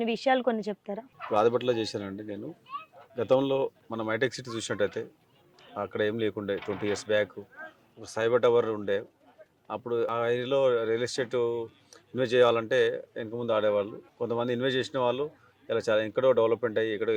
విషయాలు కొన్ని చెప్తారా? ఆదిబట్లలో చేశానండి నేను. గతంలో మనం హైటెక్ సిటీ చూసినట్టయితే అక్కడ ఏం లేకుండే 20 years బ్యాక్ ఒక సైబర్ టవర్ ఉండే. అప్పుడు ఆ ఏరియాలో రియల్ ఎస్టేట్ ఇన్వెస్ట్ చేయాలంటే వెనక ముందు ఆడేవాళ్ళు. కొంతమంది ఇన్వెస్ట్ చేసిన వాళ్ళు ఇలా చాలా ఎక్కడో డెవలప్మెంట్ అయ్యి ఎక్కడో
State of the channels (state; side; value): identical; both; correlation 1.00